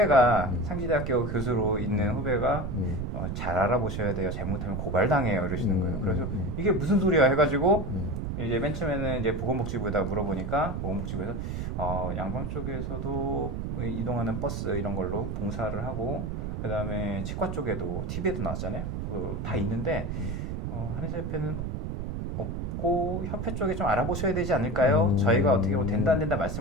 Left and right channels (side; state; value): right; noise; rumble, 3 dB below the sound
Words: 상지대학교 교수로 있는 후배가 잘 알아보셔야 돼요. 잘못하면 고발당해요. 이러시는 거예요. 그래서 이게 무슨 소리야 해가지고 이제 맨 처음에는 이제 보건복지부에다 물어보니까 보건복지부에서 양방 쪽에서도 이동하는 버스 이런 걸로 봉사를 하고 그 다음에 치과 쪽에도 TV에도 나왔잖아요. 다 있는데 한의사협회는 없고 협회 쪽에 좀 알아보셔야 되지 않을까요? 저희가 어떻게 뭐 된다 안 된다